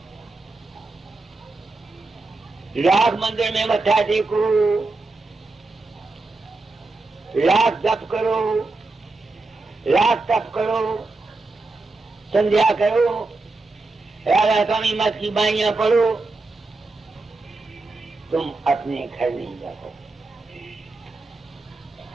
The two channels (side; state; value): left; quieter; 3.4 dB